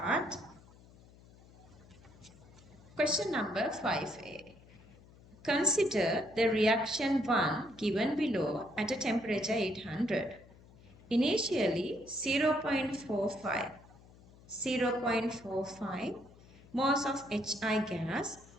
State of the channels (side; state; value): left; noise; hum, 23 dB below the sound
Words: Question number 5a. Consider the reaction 1 given below at a temperature 800. Initially 0.45 moles of HI gas